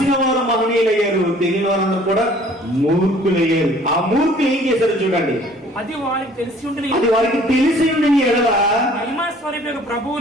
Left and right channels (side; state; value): both; normal; correlation 0.54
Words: వారు మహనీయులయ్యారు, తెలియని వారందరూ కూడా మూర్ఖులయ్యారు. ఆ మూర్ఖులు ఏం చేశారు చూడండి. అది వారికి తెలిసి ఉండని ఎడల మహిమా